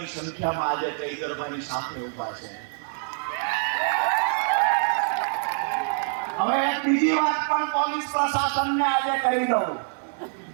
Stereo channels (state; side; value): silent; left; digital silence